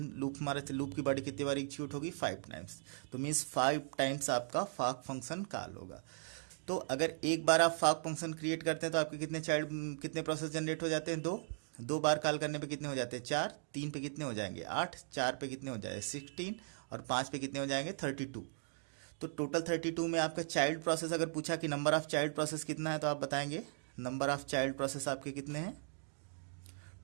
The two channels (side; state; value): left; silent; digital silence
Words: लूप की बॉडी कितनी बार एग्जीक्यूट होगी, 5 टाइम्स। तो मीन्स 5 टाइम्स आपका फॉक फंक्शन कॉल होगा। तो अगर एक बार आप फॉक फंक्शन क्रिएट करते हैं तो आपके कितने प्रोसेस जनरेट हो जाते हैं, 2 बार कॉल करने पे कितने हो जाते हैं, 4, 3 पे कितने हो जाएंगे, 8, 4 पे कितने हो जाएंगे, 16, और 5 पे कितने हो जाएंगे, 32। तो टोटल 32 में आपका चाइल्ड प्रोसेस अगर पूछा कि नंबर ऑफ चाइल्ड प्रोसेस कितना है, तो आप बताएंगे नंबर ऑफ चाइल्ड प्रोसेस आपके कितने हैं,